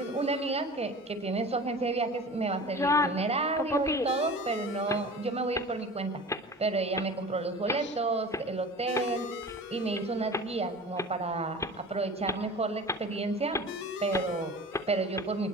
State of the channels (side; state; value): both; normal; correlation 0.38